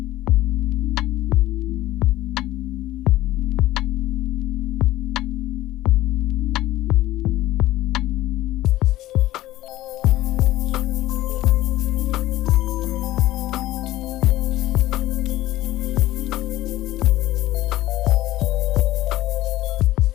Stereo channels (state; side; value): quieter; right; 15.8 dB